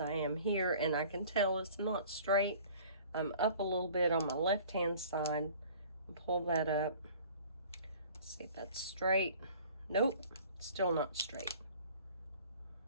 I am here, and I can tell it's not straight. I'm up a little bit on my left-hand side. Pull that up. Let's see if that's straight. Nope, still not straight.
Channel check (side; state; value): both; inverted; correlation -0.49